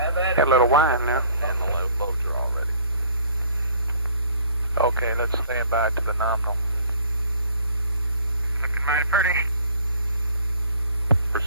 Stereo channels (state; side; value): inverted; both; correlation -0.56